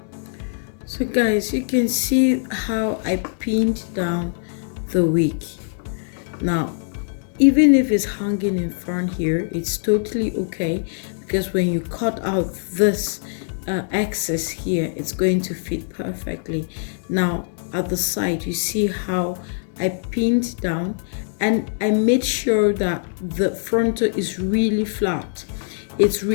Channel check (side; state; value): right; silent; digital silence